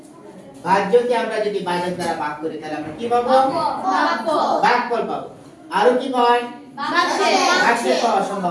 ভাজ্যকে আমরা যদি ভাজক দ্বারা ভাগ করি তাহলে আমরা কি পাবো? ভাগফল পাবো। আরো কি হয়? ভাগশেষ পাওয়ার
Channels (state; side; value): identical; both; correlation 1.00